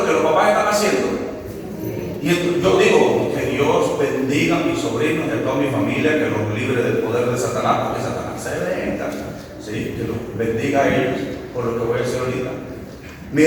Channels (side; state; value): both; identical; correlation 1.00